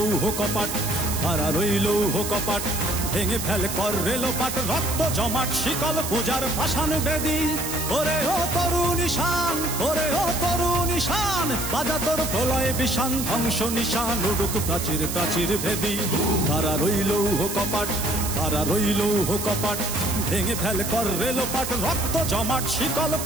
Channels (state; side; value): noise; right; hiss, 5 dB below the sound